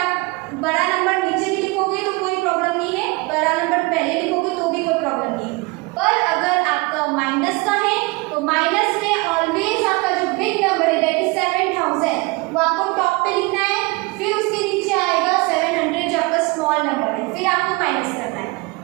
बड़ा नंबर नीचे भी लिखोगे तो कोई प्रॉब्लम नहीं है, बड़ा नंबर पहले लिखोगे तो भी कोई प्रॉब्लम नहीं है। पर अगर आपका माइनस का है तो माइनस में ऑलवेज आपका जो बिग नंबर है दैट इज 7,000 वो आपको टॉप पे लिखना है, फिर उसके नीचे आएगा 700 जो आपका स्मॉल नंबर है, फिर आपको माइनस करना है।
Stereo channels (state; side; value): quieter; left; 25.3 dB